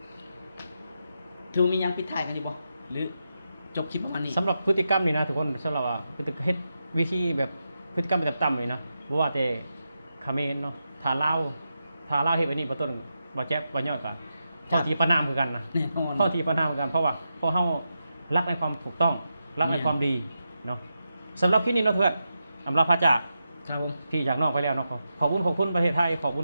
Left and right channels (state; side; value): inverted; both; correlation -0.87